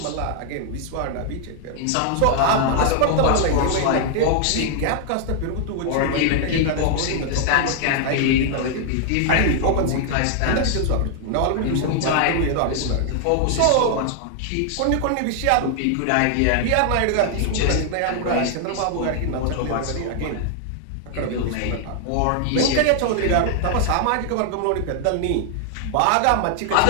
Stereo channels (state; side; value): different; both; correlation 0.00